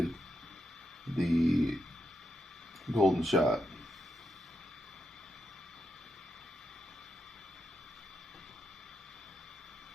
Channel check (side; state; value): both; normal; correlation 0.84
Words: the golden shot.